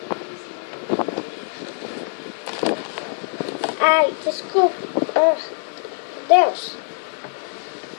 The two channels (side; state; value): right; silent; digital silence